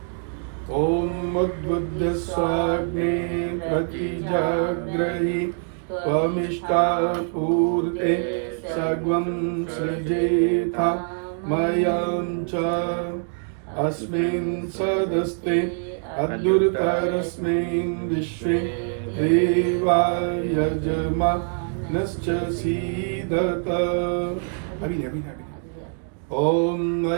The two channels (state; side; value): silent; left; 55 dB below the other